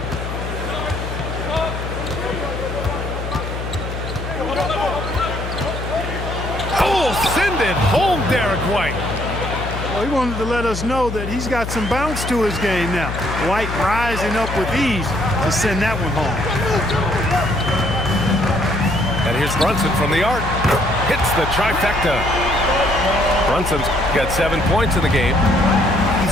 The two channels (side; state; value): left; noise; hum, 6 dB below the sound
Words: Oh, send it home, Derek White. Well, he wanted to let us know that he's got some bounce to his game now. White rising up with ease to send that one home. And here's Brunson from the arc. Hits the trifecta. Brunson's got 7 points in the game.